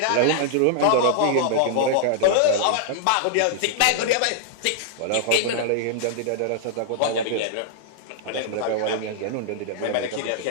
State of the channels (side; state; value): both; different; correlation -0.01